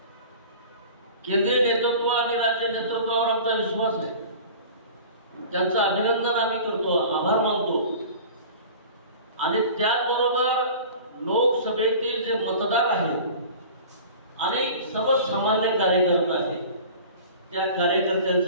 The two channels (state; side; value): inverted; both; correlation -0.40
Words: केंद्रीय नेतृत्व आणि राज्य नेतृत्वावर आमचा विश्वास आहे. त्यांचं अभिनंदन आम्ही करतो, आभार मानतो. आणि त्याचबरोबर लोकसभेतील जे मतदार आहेत आणि सर्वसामान्य कार्यकर्ते आहेत त्या